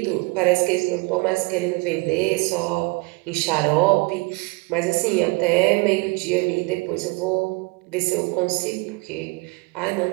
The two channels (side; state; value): left; quieter; 27.3 dB